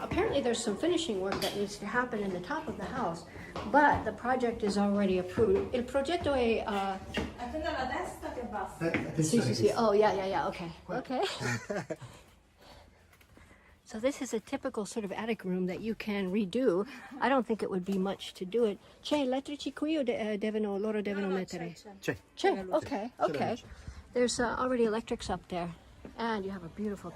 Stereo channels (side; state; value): both; identical; correlation 1.00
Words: there's some finishing work that needs to happen in the top of the house, but the project is already approved. Il progetto è... Attenda la destra che basta. Sì, sì, sì. Oh, yeah. Okay. Okay. So this is a typical sort of attic room that you can redo. I don't think it would be much to do it. C'è elettrici qui o loro devono mettere? C'è. C'è. Okay. There's already electrics up there. And you have a beautiful